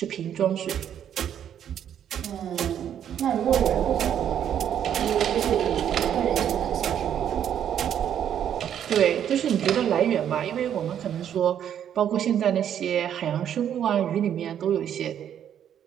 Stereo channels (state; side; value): quieter; left; 9.6 dB